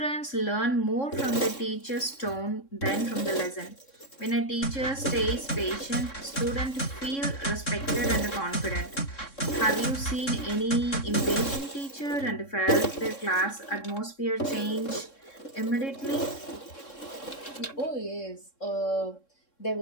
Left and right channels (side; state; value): right; late; 3.6 ms